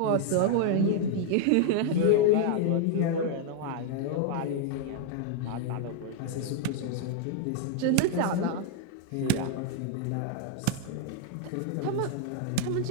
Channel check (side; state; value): both; different; correlation 0.00